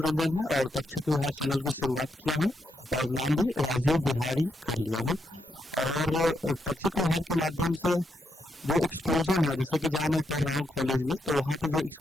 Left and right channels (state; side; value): normal; both; correlation 0.80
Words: रंजन है और तक्षक बिहार चैनल की शुरुआत किया हूं और नाम भी राजीव बिहारी कर लिया हूं। और तक्षक बिहार के माध्यम से जो एक्सक्लूजन है, जैसे कि जहां मैं पढ़ रहा हूं कॉलेज में, तो वहां पे जो